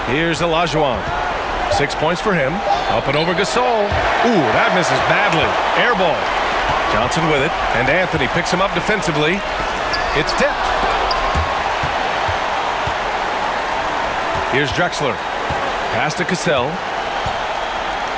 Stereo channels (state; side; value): identical; both; correlation 1.00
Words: Here's Olajuwon. 6 points for him. Up and over Gasol. Ooh, that misses badly. Air ball. Johnson with it. And Anthony picks him up defensively. It's tipped. Here's Drexler. Pass to Cassell.